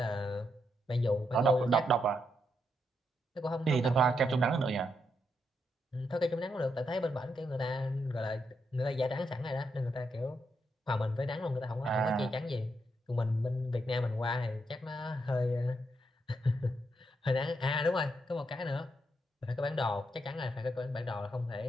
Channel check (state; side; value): normal; both; correlation 0.80